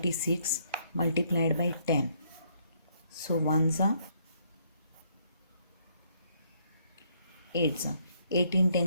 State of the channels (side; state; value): both; inverted; correlation -0.69